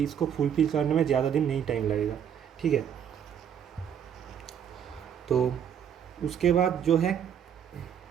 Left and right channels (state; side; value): quieter; left; 8.6 dB